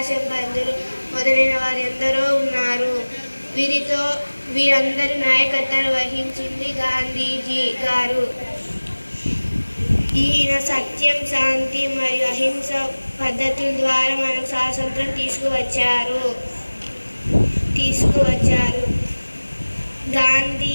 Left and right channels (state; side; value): inverted; both; correlation -1.00